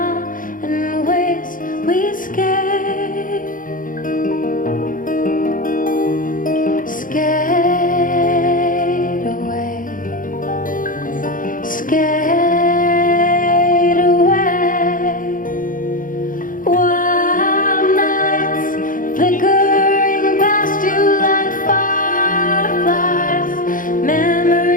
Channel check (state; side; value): late; right; 0.39 ms